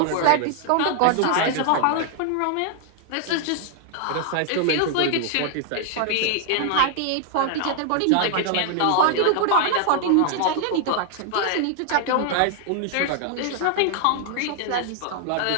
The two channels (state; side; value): different; both; correlation 0.00